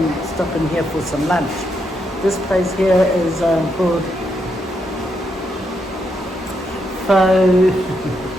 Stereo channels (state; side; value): normal; both; correlation 0.80